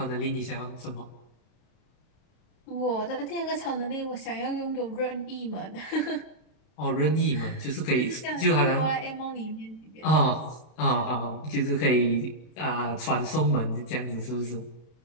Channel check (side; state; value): right; late; 32 ms